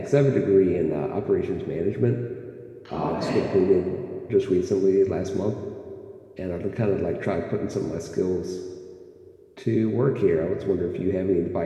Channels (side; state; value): both; identical; correlation 1.00